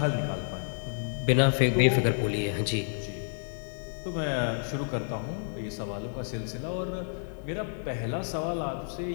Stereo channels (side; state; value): right; silent; 58 dB below the other